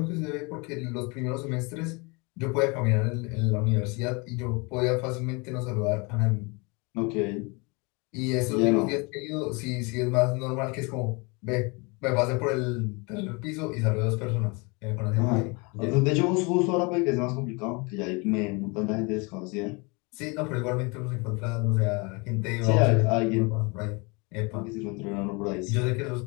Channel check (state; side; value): quieter; right; 29.2 dB